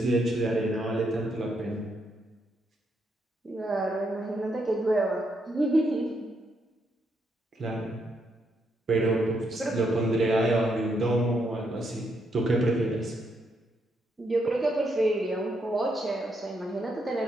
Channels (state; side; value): normal; both; correlation 0.78